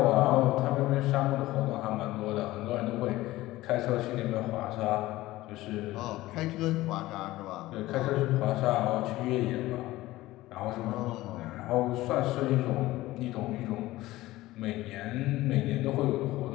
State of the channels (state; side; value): quieter; right; 17.4 dB